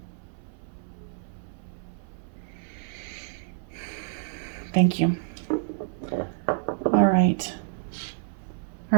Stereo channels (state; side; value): silent; left; 59 dB below the other